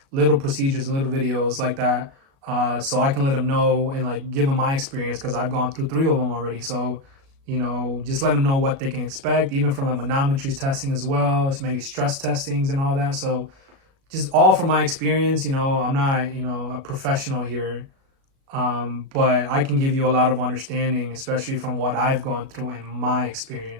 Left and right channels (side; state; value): left; late; 37 ms